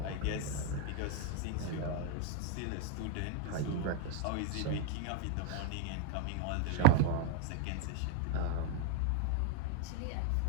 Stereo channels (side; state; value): both; different; correlation 0.01